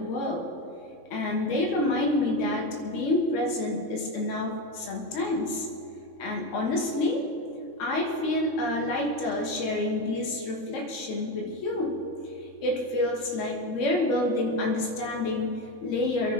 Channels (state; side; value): late; right; 3.6 ms